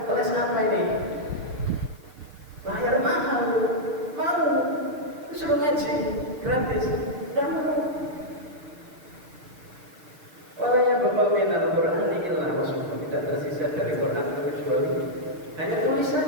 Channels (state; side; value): late; left; 6.6 ms